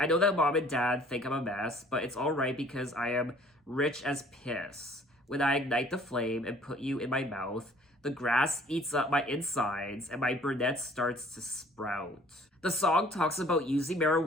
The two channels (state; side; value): normal; both; correlation 0.55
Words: know that mom and dad think I'm a mess, but it's alright because I am rich as piss. When I ignite the flame and put you in my mouth, the grass eats up my insides and my brunette starts to sprout. The song talks about using